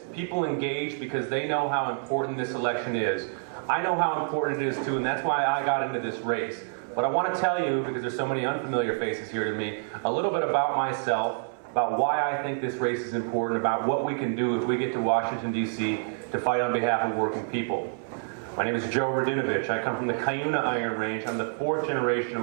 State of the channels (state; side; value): silent; left; 60 dB below the other